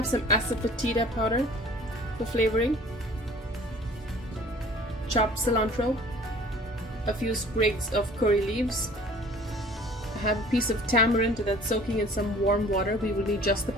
some asafoetida powder for flavoring, chopped cilantro, a few sprigs of curry leaves. I have a piece of tamarind that's soaking in some warm water. We will need just the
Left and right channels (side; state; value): both; normal; correlation 0.49